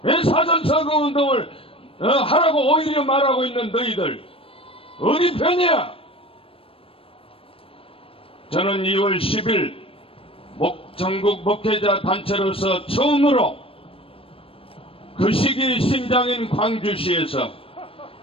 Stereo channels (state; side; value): late; right; 0.27 ms